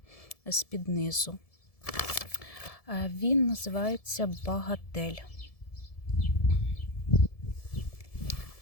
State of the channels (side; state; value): right; late; 1.7 ms